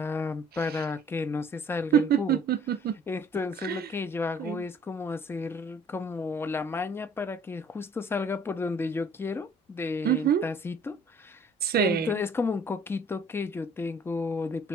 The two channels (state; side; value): normal; both; correlation 0.56